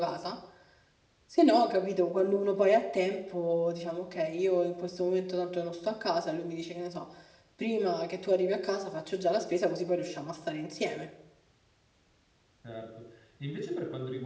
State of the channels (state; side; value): identical; both; correlation 1.00